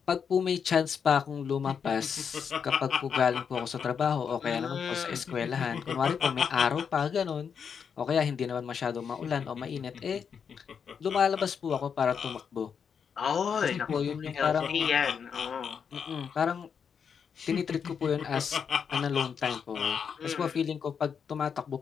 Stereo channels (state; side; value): quieter; right; 6.8 dB